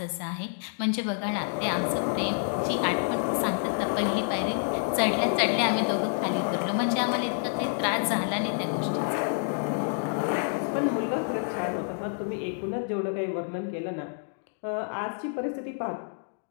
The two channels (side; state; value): right; silent; digital silence